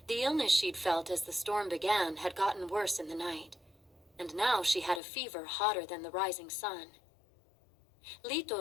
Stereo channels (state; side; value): drops out; right; at 5.0 s